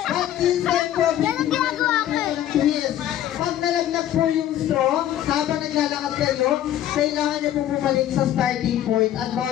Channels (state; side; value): quieter; right; 11.9 dB